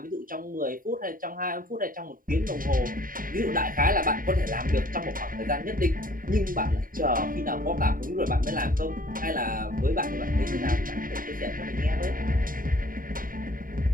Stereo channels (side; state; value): left; late; 0.41 ms